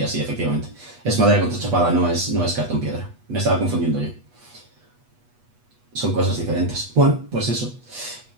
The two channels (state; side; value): late; left; 8.2 ms